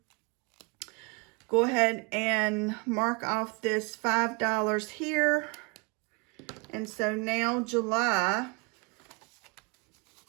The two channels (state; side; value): quieter; left; 30.3 dB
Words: go ahead and mark off this $5 here. And so now July